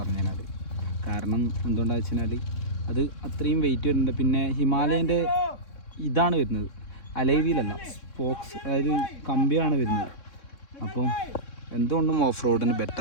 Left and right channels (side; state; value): right; late; 3.6 ms